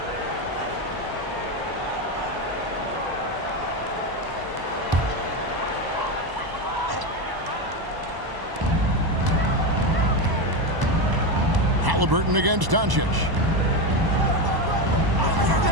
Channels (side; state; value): left; late; 1.0 ms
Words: Halliburton against Doncic.